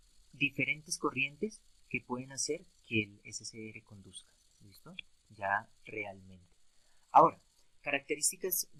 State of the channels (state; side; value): identical; both; correlation 1.00